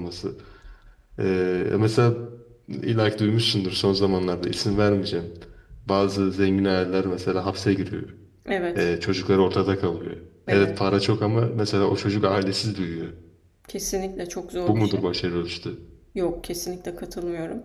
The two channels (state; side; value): identical; both; correlation 1.00